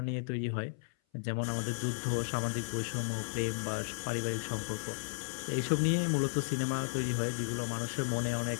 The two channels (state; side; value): silent; right; 55 dB below the other